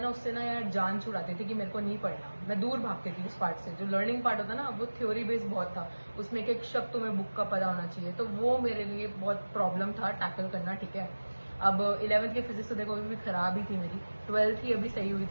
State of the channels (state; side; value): inverted; both; correlation -1.00